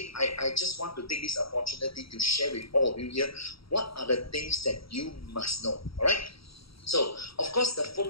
I just want to take this opportunity to share with all of you here what are the things that you must know, all right? So, of course, the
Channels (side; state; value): right; late; 0.75 ms